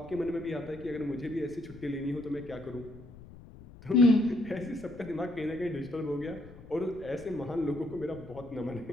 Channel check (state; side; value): noise; left; rumble, 18 dB below the sound